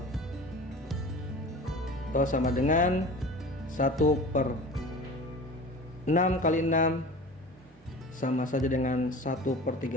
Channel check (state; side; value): normal; both; correlation 0.38